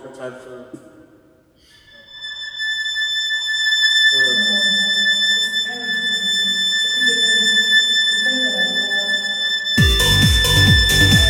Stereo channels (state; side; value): identical; both; correlation 1.00